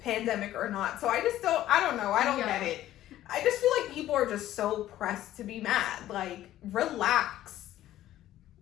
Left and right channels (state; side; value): quieter; right; 13.5 dB